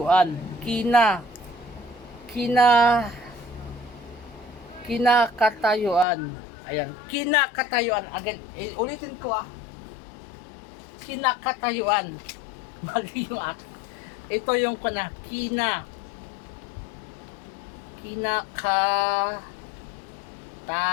Kinakatayuan. Ayan, kinakatayuan. Again, ulitin ko ah. Kinakatayuan. Mali yung akin. Ito yung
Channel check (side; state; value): right; drops out; at 6.1 s